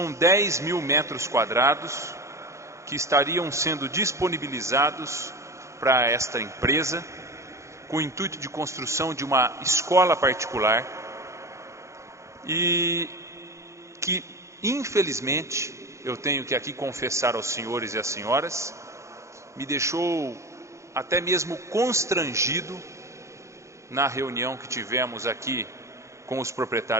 10 mil metros quadrados que estariam sendo disponibilizados para esta empresa, com o intuito de construção de uma escola particular e que, infelizmente, eu tenho que aqui confessar aos senhores e às senhoras, me deixou até mesmo constrangido na reunião que tivemos aqui com os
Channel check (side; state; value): left; late; 0.14 ms